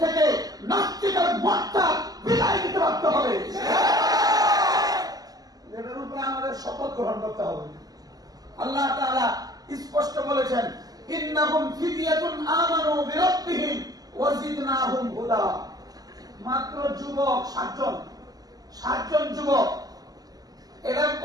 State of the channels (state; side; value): late; left; 0.18 ms